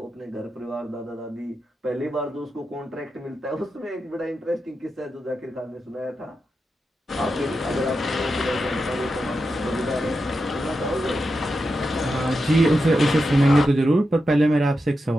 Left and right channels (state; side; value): normal; both; correlation 0.88